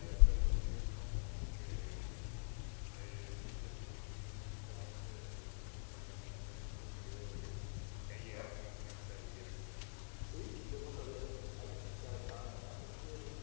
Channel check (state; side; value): silent; right; digital silence